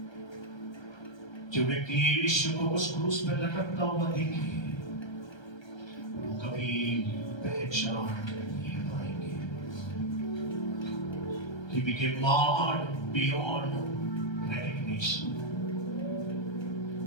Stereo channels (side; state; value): right; late; 1.3 ms